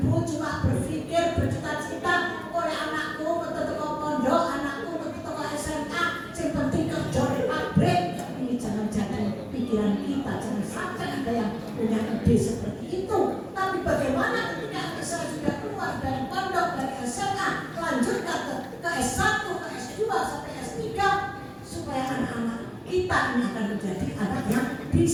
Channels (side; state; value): both; identical; correlation 1.00